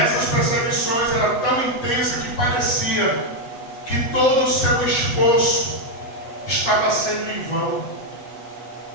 perseguições eram tão intensas que parecia que todo o seu esforço estava sendo em vão.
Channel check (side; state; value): right; late; 8.0 ms